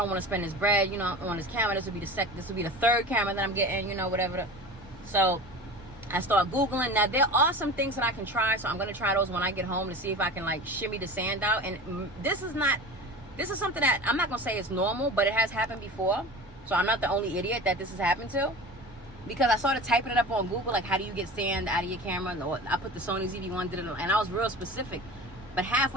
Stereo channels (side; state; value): both; normal; correlation 0.34